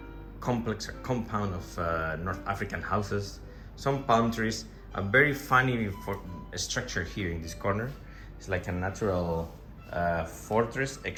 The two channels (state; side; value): identical; both; correlation 1.00